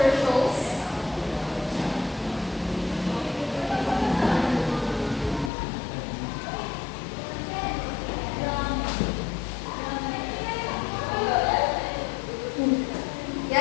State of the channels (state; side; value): drops out; right; at 5.5 s